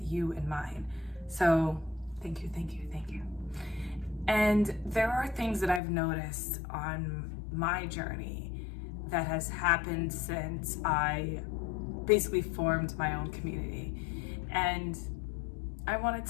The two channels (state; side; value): drops out; right; at 5.8 s